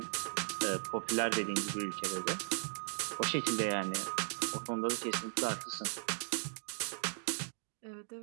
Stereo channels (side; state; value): left; silent; digital silence